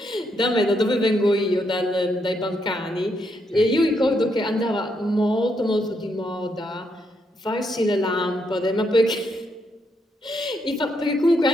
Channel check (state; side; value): normal; both; correlation 0.78